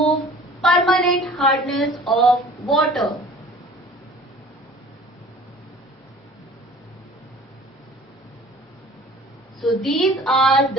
permanent hardness of water. So these are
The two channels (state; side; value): normal; both; correlation 0.47